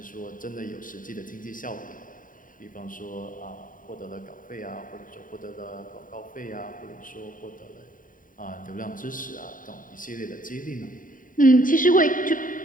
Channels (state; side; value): late; right; 0.39 ms